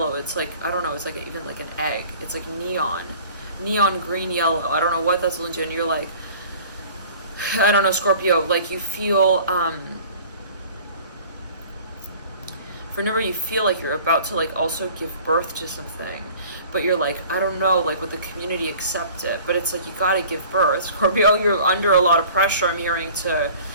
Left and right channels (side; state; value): both; inverted; correlation -0.47